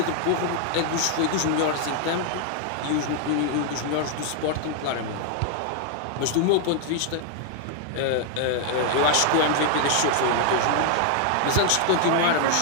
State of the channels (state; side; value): different; both; correlation 0.00